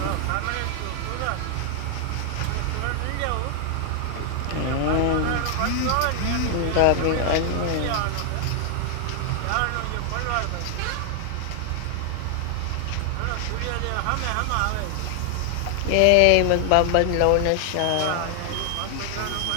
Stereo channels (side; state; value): both; different; correlation 0.00